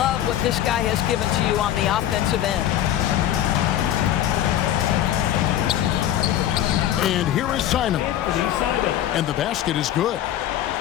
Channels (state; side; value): quieter; right; 11.9 dB